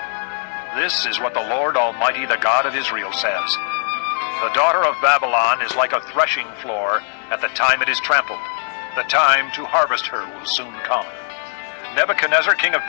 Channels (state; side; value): silent; right; 66 dB below the other